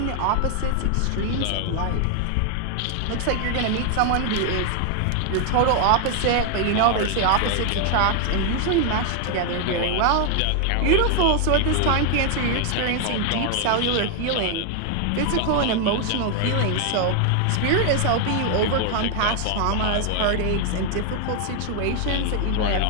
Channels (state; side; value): different; both; correlation 0.00